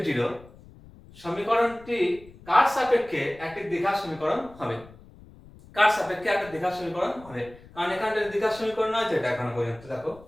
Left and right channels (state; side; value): noise; left; rumble, 22 dB below the sound